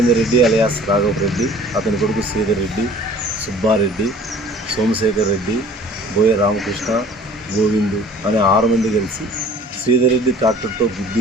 రెడ్డి అలియాస్ రాఘవ్ రెడ్డి, అతని కొడుకు శ్రీధర్ రెడ్డి, సుబ్బారెడ్డి, సోమశేఖర్ రెడ్డి, బోయ రామకృష్ణ, గోవిందు అనే 6 మంది కలిసి శ్రీధర్ రెడ్డి ట్రాక్టర్తో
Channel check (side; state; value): both; normal; correlation 0.49